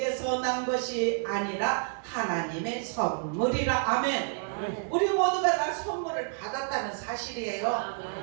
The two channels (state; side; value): silent; left; 57 dB below the other